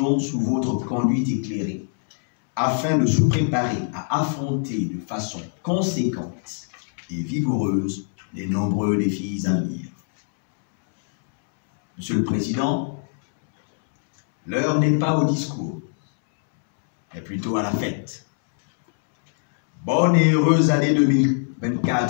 sous votre conduite éclairée, afin de se préparer à affronter de façon conséquente et vigoureuse les nombreux défis à venir. Monsieur le Président, l'heure n'est pas au discours, mais plutôt à la fête. Bonne et heureuse année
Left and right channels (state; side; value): silent; right; 64 dB below the other